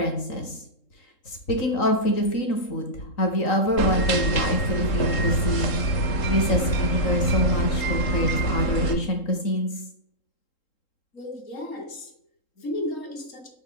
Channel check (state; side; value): late; right; 3.7 ms